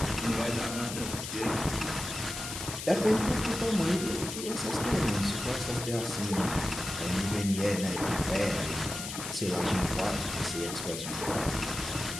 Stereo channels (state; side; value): noise; left; hiss, 7 dB below the sound